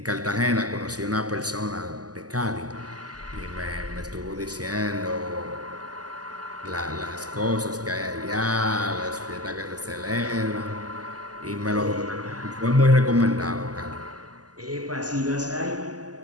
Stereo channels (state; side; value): late; left; 0.67 ms